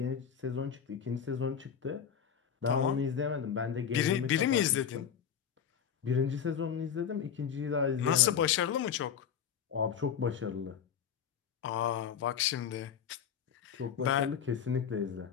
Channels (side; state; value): right; quieter; 8.0 dB